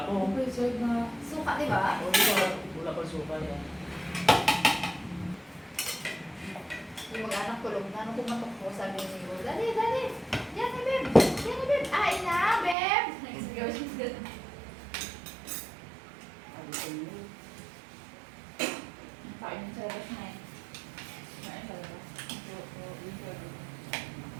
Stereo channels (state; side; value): drops out; left; at 12.8 s